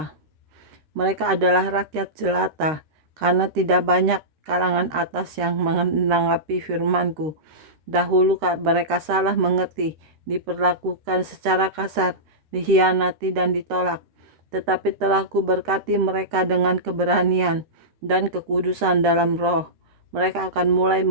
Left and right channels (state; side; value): late; left; 13 ms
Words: Mereka adalah rakyat jelata, karena tidak banyak kalangan atas yang menanggapi firman-Ku. Dahulu mereka salah mengerti, diperlakukan secara kasar, dikhianati dan ditolak. Tetapi telah Kuberkati mereka dengan keberanian dan kekudusan dalam roh. Mereka akan mulai